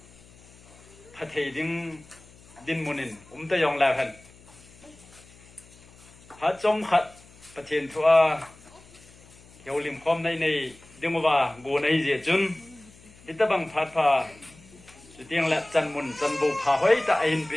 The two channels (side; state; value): left; noise; hum, 24 dB below the sound